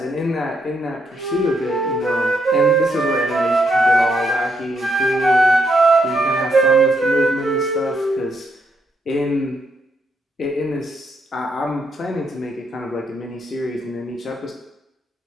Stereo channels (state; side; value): normal; both; correlation 0.77